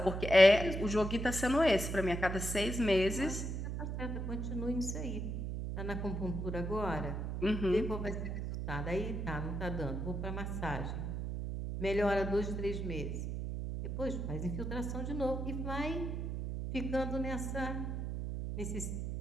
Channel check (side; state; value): right; noise; hum, 3 dB below the sound